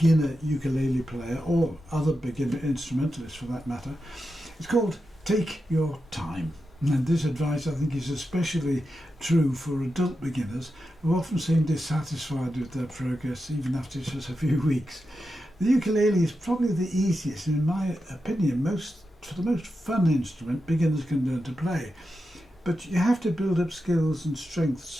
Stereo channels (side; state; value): both; normal; correlation 0.89